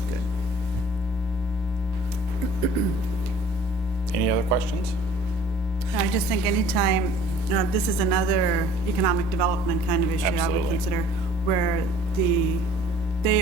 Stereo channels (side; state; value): both; normal; correlation 0.51